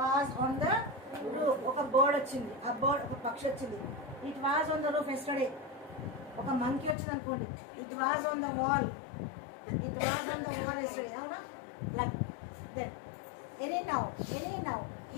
was on the roof. ఒక బర్డ్ వచ్చింది, ఆ బర్డ్ ఒక పక్షి వచ్చింది. It was on the roof yesterday. ఒక మంకీ వచ్చింది అనుకోండి. It was on the wall. It was on the wall yesterday. అవునా? Like that. Anyhow,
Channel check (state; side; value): drops out; right; at 7.0 s